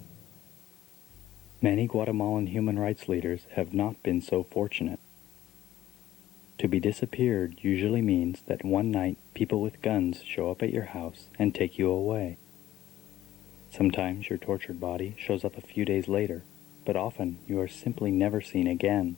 Many Guatemalan human rights leaders have not been so fortunate. To be disappeared usually means that one night people with guns show up at your house and take you away. Sometimes your tortured body shows up a few days later, but often you are simply never seen again.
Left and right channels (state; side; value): quieter; right; 13.7 dB